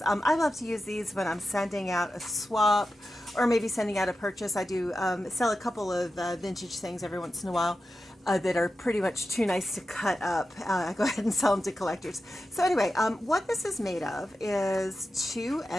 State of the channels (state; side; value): normal; both; correlation 0.91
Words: I love to use these when I'm sending out a swap or maybe sending out a purchase. I do sell a couple of vintage things every once in a while. That are pretty much too nice to cut up. I go ahead and sell them to collectors. So anyway, what this is made of is 2